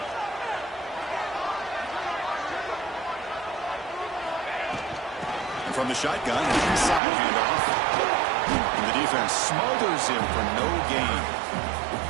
And from the shotgun, an inside handoff. And the defense smothers him for no gain.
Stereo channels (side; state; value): left; drops out; at 7.0 s